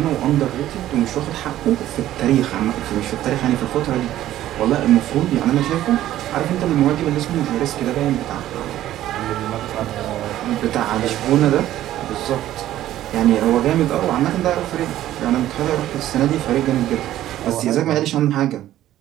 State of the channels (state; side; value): quieter; left; 13.3 dB